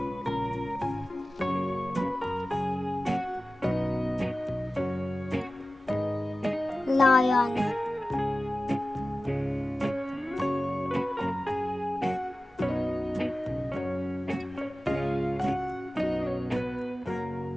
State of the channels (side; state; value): both; normal; correlation 0.96